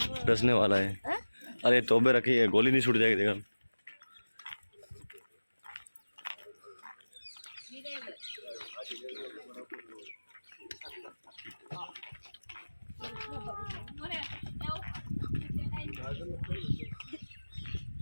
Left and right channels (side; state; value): both; inverted; correlation -1.00